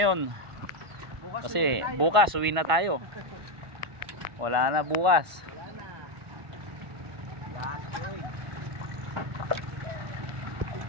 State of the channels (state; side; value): late; left; 1.5 ms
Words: Kasi bukas uwi na tayo. Wala na bukas.